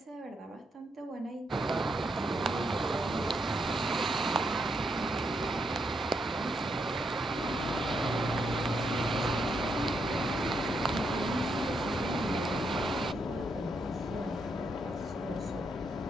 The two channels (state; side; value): normal; both; correlation 0.79